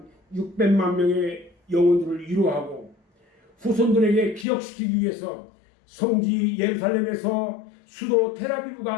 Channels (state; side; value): drops out; right; at 4.5 s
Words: 600만 명의 영혼들을 위로하고 후손들에게 기억시키기 위해서 성지 예루살렘에서 수도 텔아비브